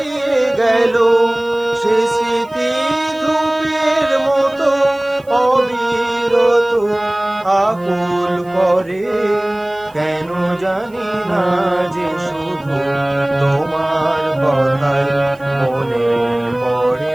গেল। সে স্মৃতি ধূপের মতো অবিরত আকুল করে, কেন জানি না যে শুধু তোমার কথাই মনে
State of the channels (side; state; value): right; noise; hiss, 30 dB below the sound